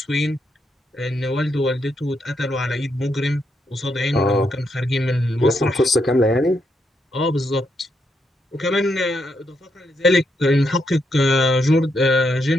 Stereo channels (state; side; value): normal; both; correlation 0.79